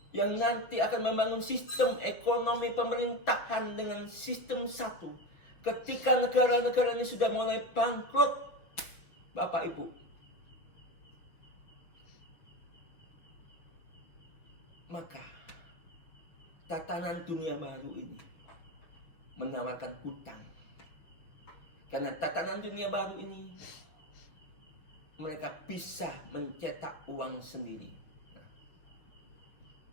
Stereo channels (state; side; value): late; right; 6.2 ms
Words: yang nanti akan membangun sistem ekonomi pemerintahan dengan sistem satu. Ketika negara-negara ini sudah mulai bangkrut, Bapak Ibu, maka tatanan dunia baru ini menawarkan hutang. Karena tatanan dunia baru ini, mereka bisa mencetak uang sendiri. Nah,